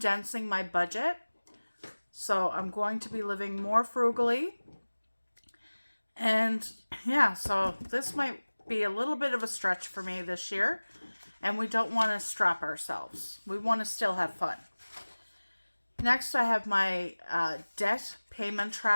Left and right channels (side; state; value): both; inverted; correlation -1.00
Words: my budget. So I'm going to be living more frugally. And yeah, so this might be a little bit of a stretch for me this year. And we don't want to strap ourselves. We want to still have fun. Next, I have my debt payment